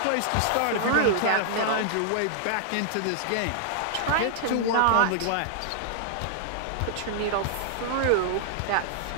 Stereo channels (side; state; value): both; different; correlation -0.01